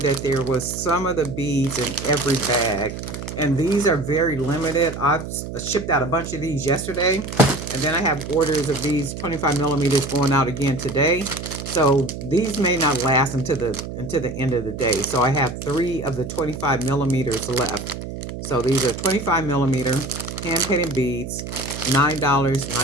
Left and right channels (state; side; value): noise; right; hum, 8 dB below the sound